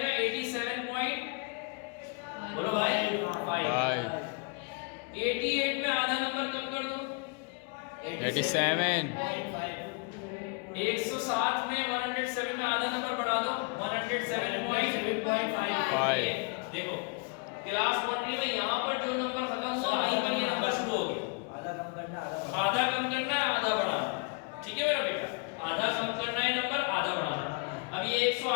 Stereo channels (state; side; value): quieter; right; 34.7 dB